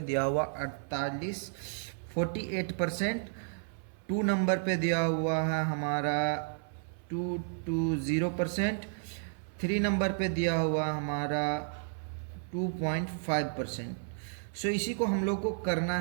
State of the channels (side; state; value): left; silent; 56 dB below the other